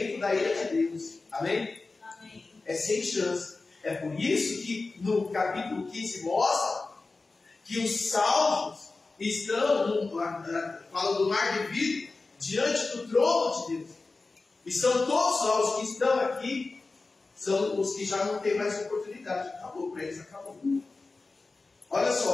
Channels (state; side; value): quieter; right; 3.7 dB